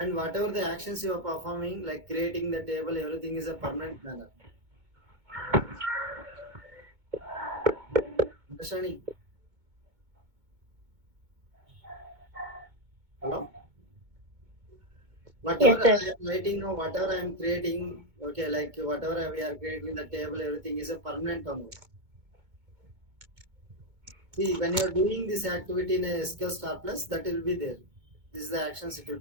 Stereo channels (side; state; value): left; late; 2.2 ms